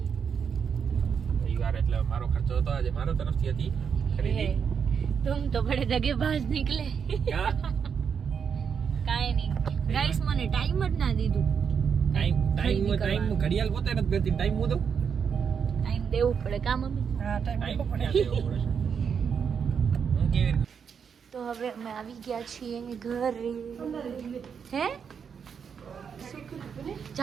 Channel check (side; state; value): left; quieter; 6.8 dB